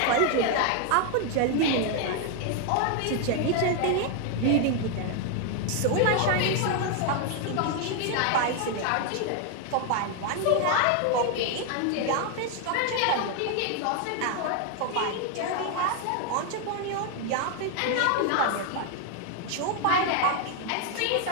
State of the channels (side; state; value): both; different; correlation 0.01